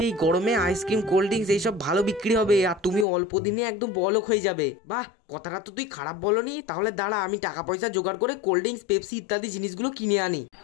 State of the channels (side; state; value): right; drops out; at 3.1 s